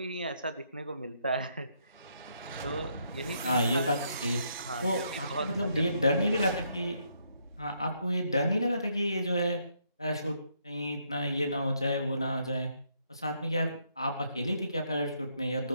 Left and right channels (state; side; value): inverted; both; correlation -0.74